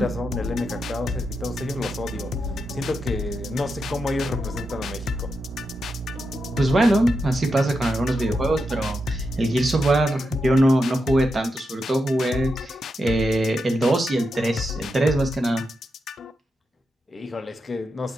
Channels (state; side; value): normal; both; correlation 0.86